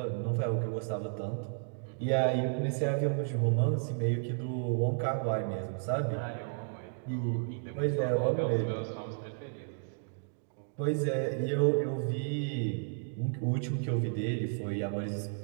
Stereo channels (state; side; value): silent; left; digital silence